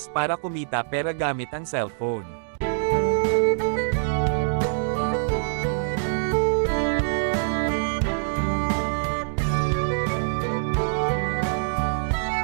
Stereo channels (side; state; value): left; silent; digital silence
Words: para kumita pera gamit ang cellphone.